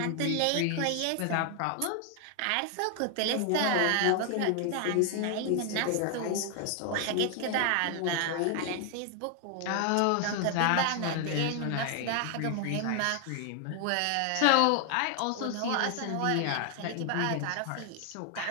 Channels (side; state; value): both; different; correlation 0.00